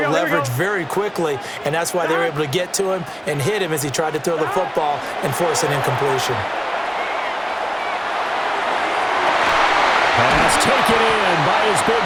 leverage very quickly, and that's why they were able to get to him and hit him as he tried to throw the football and force an incompletion. Pass taken in by his big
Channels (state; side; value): identical; both; correlation 1.00